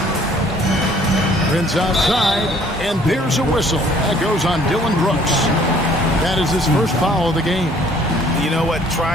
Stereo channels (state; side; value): normal; both; correlation 0.58